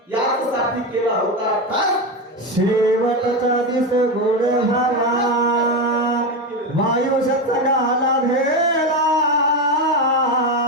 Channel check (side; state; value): both; normal; correlation 0.14